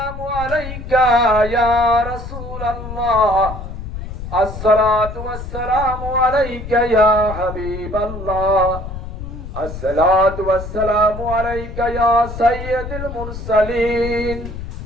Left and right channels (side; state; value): left; noise; rumble, 9 dB below the sound